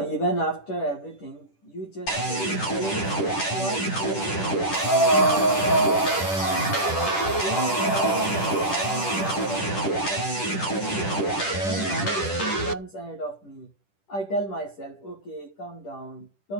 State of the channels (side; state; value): right; late; 10 ms